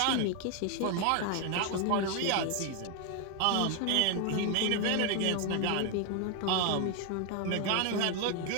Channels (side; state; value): both; different; correlation 0.01